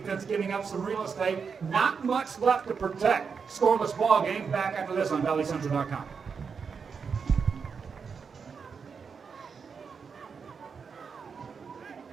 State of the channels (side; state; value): left; quieter; 5.8 dB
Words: giving up some real estate. Not much left to protect. Scoreless ball game. Back after this on ValleyCentral.com.